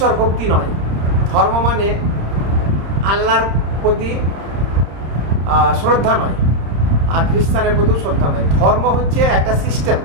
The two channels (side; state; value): left; late; 31 ms